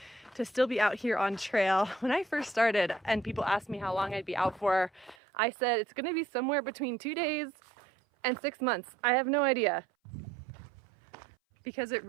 to still be out here on trail. When I first started and people asked me how long I'd be out for, I said it's gonna be somewhere between 2 days and 6 months. I have no idea. Because it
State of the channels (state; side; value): drops out; left; at 5.2 s